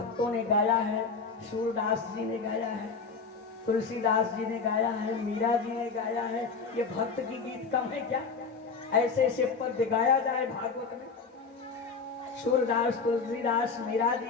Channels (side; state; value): right; quieter; 4.9 dB